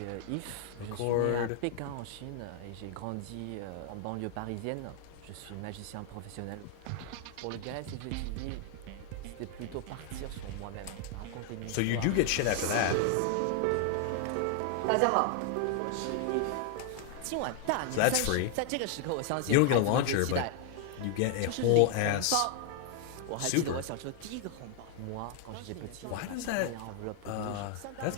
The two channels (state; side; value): different; both; correlation 0.00